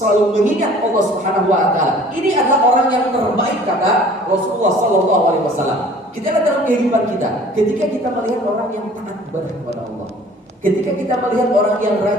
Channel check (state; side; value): normal; both; correlation 0.50